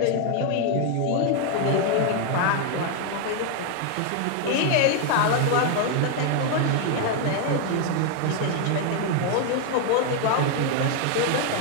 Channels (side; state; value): both; different; correlation 0.01